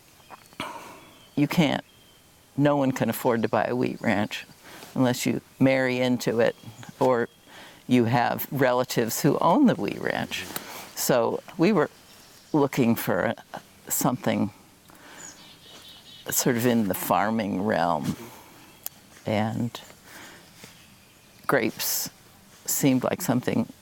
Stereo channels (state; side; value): identical; both; correlation 1.00